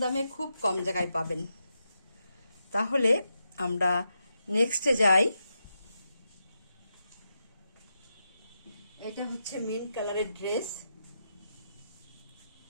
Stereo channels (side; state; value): both; inverted; correlation -0.86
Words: দামে খুব কম জায়গায় পাবেন। তাহলে আমরা নেক্সটে যাই। এটা হচ্ছে মিন্ট কালারের ড্রেস,